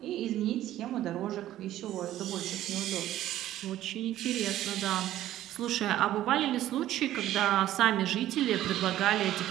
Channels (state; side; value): quieter; left; 13.4 dB